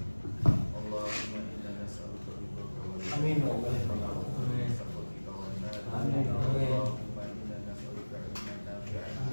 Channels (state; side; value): inverted; both; correlation -1.00